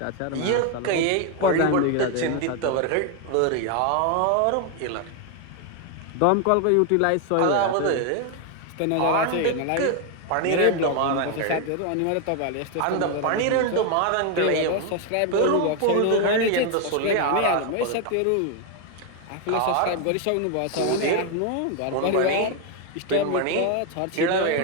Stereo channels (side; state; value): both; different; correlation 0.01